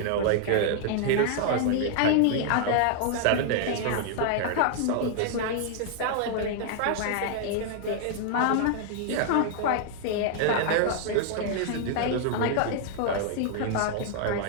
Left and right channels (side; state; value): both; different; correlation 0.00